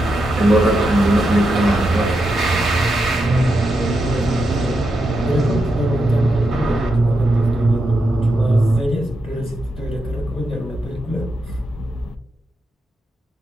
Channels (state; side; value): normal; both; correlation 0.85